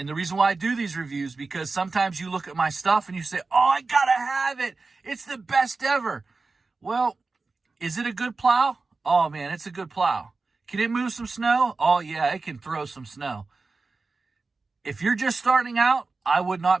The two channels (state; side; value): quieter; left; 3.9 dB